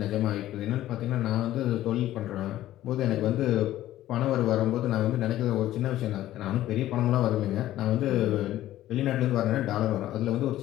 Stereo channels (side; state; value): right; quieter; 14.0 dB